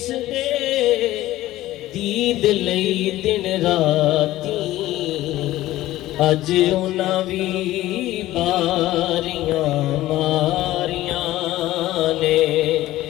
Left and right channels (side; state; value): right; quieter; 15.7 dB